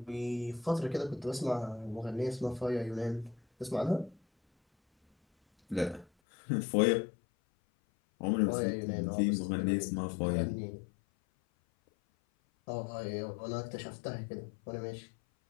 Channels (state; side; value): drops out; right; at 6.1 s